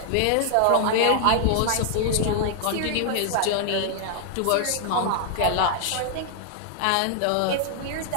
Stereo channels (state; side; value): different; both; correlation 0.00